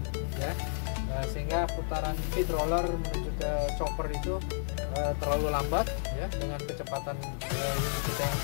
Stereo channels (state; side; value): silent; right; 57 dB below the other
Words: ya, sehingga putaran feed roller menuju ke chopper itu terlalu lambat ya, dengan kecepatan unit kita yang